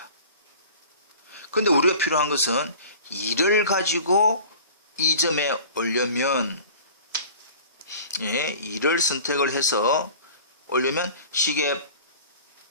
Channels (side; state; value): both; inverted; correlation -0.42